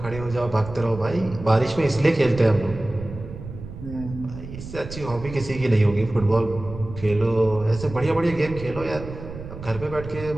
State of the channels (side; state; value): right; noise; rumble, 12 dB below the sound